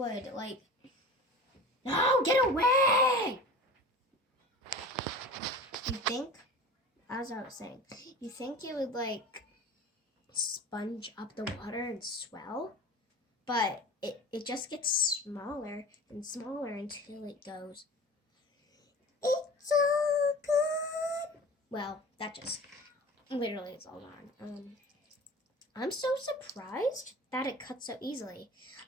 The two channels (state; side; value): normal; both; correlation 0.37